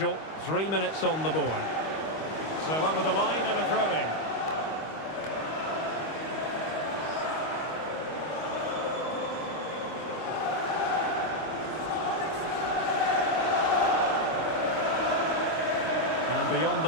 3 minutes on the board. So up with the line and a throw-in. And beyond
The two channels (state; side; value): late; right; 25 ms